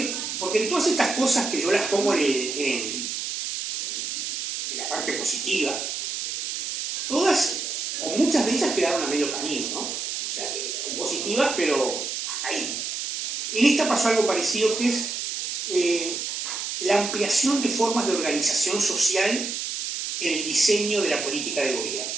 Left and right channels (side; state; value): right; noise; hiss, 4 dB below the sound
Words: porque en todas estas cosas que yo las pongo en la parte positiva, todas, o muchas de ellas quedaron a medio camino, ¿no? O sea, que son positivas, pero hasta ahí. En esta pasó algo parecido, que es la ampliación de formas de organización social en el diseño de la política de gobierno.